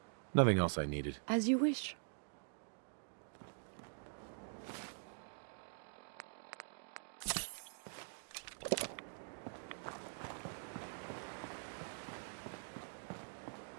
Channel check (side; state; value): left; silent; digital silence